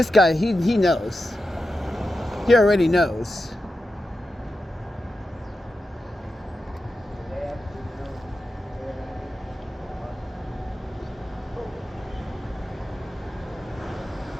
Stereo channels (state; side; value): normal; both; correlation 0.90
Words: guy, he knows. He already knows.